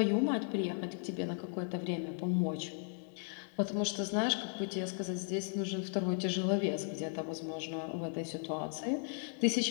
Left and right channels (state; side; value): silent; right; 54 dB below the other